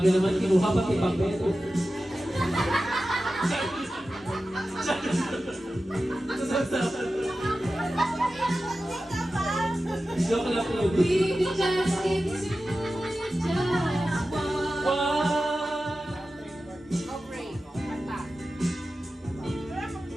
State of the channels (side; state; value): both; normal; correlation 0.94